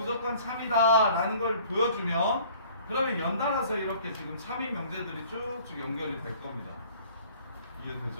참이다 라는 걸 보여주면, 그러면 연달아서 이렇게 지금 참인 명제들이 쭉쭉 연결이 될 겁니다.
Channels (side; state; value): both; inverted; correlation -0.53